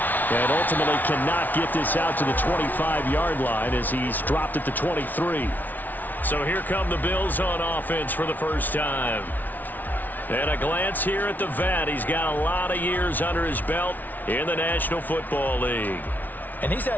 And ultimately cannot get this out to the 25-yard line as he's dropped at the 23. So here come the Bills on offense for the first time. And a glance here at the vet. He's got a lot of years under his belt in the National Football League. And he's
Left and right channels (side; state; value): right; late; 0.082 ms